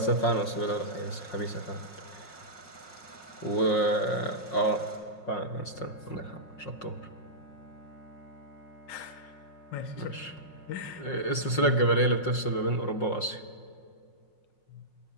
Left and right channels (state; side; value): late; right; 5.5 ms